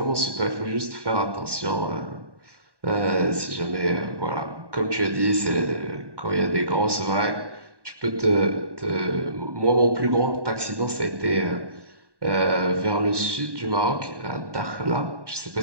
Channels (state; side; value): late; left; 1.1 ms